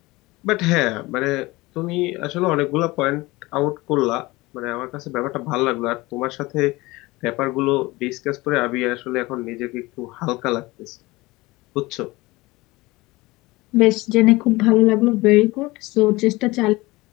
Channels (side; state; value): right; quieter; 21.2 dB